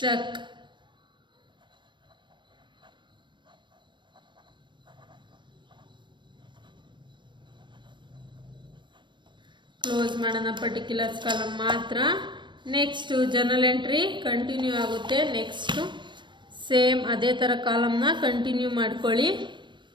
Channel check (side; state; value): left; late; 0.22 ms